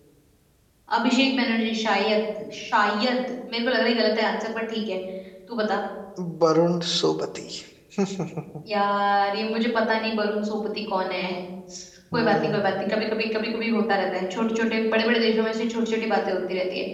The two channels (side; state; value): both; identical; correlation 1.00